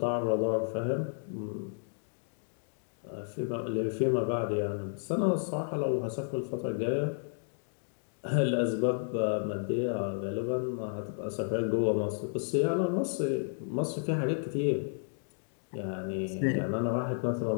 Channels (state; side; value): silent; right; digital silence